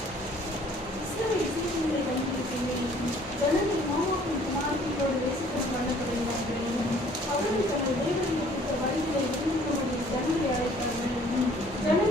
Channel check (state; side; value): normal; both; correlation 0.57